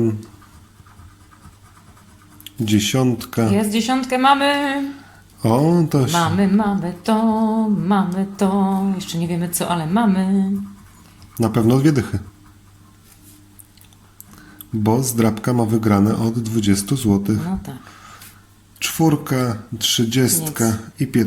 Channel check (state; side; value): identical; both; correlation 1.00